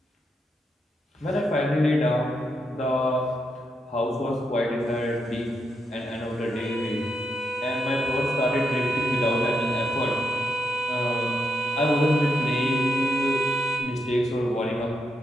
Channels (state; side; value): normal; both; correlation 0.82